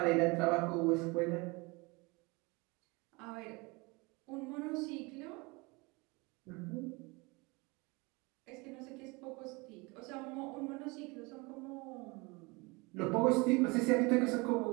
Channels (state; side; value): quieter; left; 26.4 dB